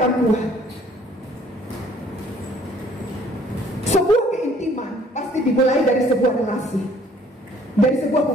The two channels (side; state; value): both; normal; correlation 0.58